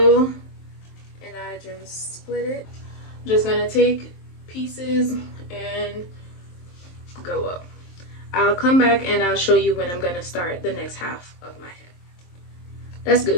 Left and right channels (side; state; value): right; late; 23 ms